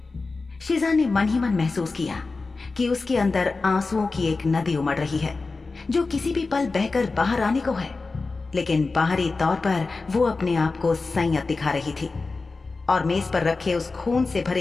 शिजा ने मन ही मन महसूस किया कि उसके अंदर आंसुओं की एक नदी उमड़ रही है जो किसी भी पल बहकर बाहर आने को है, लेकिन बाहरी तौर पर वो अपने आप को संयत दिखा रही थी और मेज पर रखे उस खून से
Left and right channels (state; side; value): quieter; right; 3.9 dB